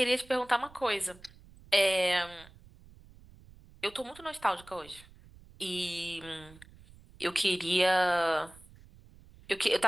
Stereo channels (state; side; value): noise; right; rumble, 23 dB below the sound